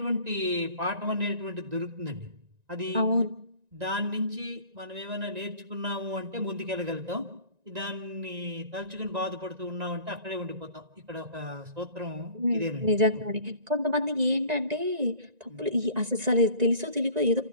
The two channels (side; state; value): left; late; 1.9 ms